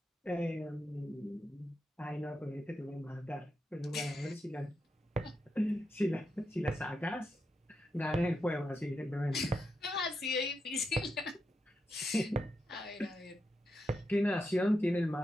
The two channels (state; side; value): normal; both; correlation 0.86